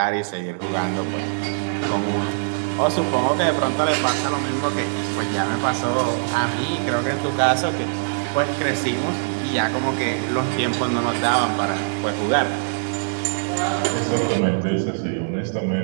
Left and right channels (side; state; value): left; silent; digital silence